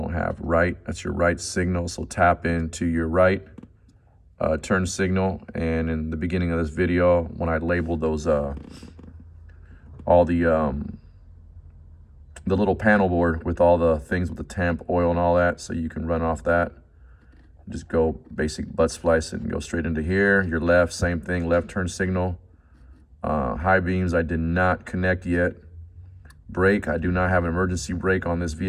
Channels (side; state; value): both; identical; correlation 1.00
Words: have. Right, that's your right signal, so tap into your right turn signal. And in the beginning of this video, when I labeled those all the little panel board with all the things with the temp, oil, and all that, so you can run off that. Just go basic butt splice it and go straight into here. Your left, same thing, left turn signal. High beams I did not connect yet. Brake, I do not have an emergency brake on this